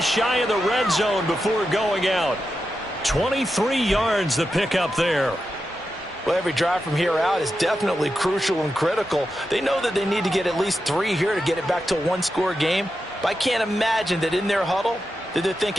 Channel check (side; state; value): both; normal; correlation 0.89